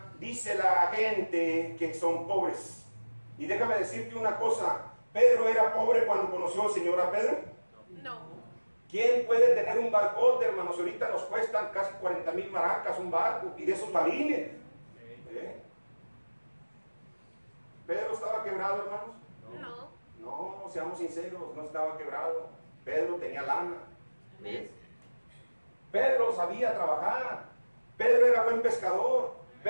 dice la gente que son pobres. Y déjame decirte una cosa, ¿Pedro era pobre cuando conoció al Señor a Pedro? No. ¿Quién puede tener un barcote, hermanos? Ahorita nos cuestan casi 40,000 maracas un barco, y de esos balines. ¿Pedro estaba quebrado, hermanos? No, seamos sinceros, no estaba quebrado. Pedro tenía lana. Amén. Pedro sabía trabajar. Pedro era buen pescador.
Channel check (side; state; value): both; inverted; correlation -1.00